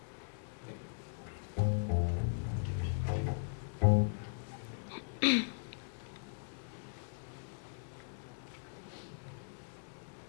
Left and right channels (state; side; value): silent; right; digital silence